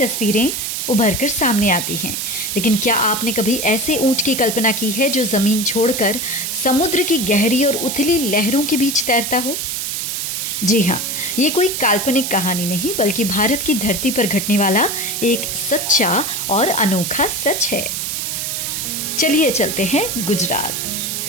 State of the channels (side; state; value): right; noise; hiss, 3 dB below the sound